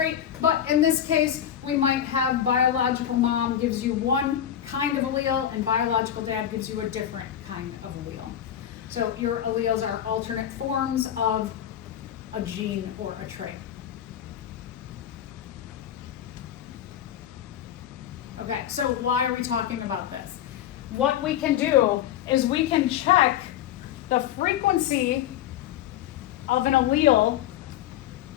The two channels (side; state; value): right; quieter; 10.6 dB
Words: But in this case, we might have biological mom gives you one kind of allele and biological dad gives you a different kind of allele. So your alleles are alternate forms of a gene or a trait. Okay, so why are we talking about this? What we can do is we can check the frequency of an allele